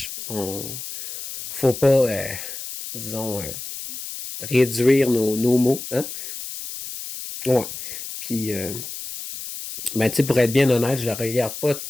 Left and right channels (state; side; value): noise; left; hiss, 9 dB below the sound